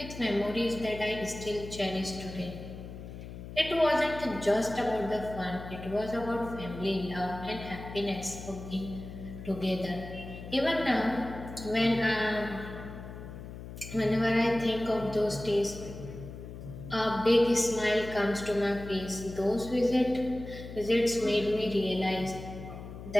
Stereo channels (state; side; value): noise; left; hum, 11 dB below the sound